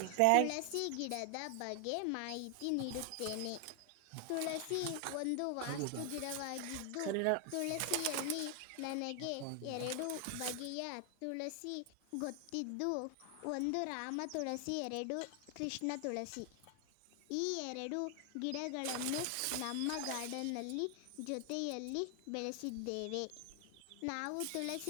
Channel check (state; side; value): different; both; correlation 0.00